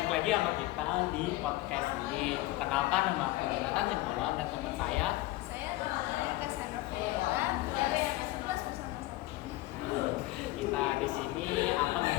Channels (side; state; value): right; quieter; 18.3 dB